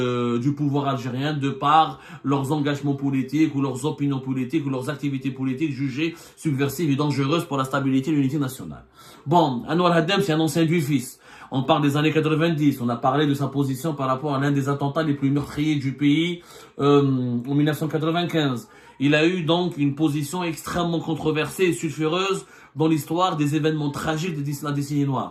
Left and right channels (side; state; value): both; identical; correlation 1.00